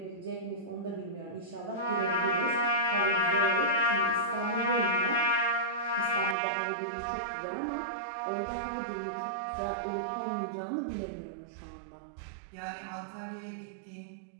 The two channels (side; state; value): left; drops out; at 6.4 s